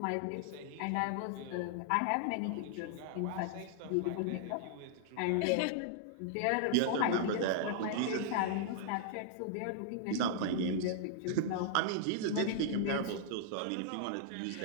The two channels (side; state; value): both; different; correlation -0.01